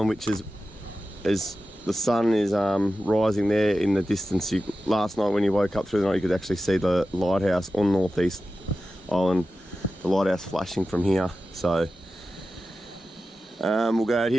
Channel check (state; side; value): normal; both; correlation 0.93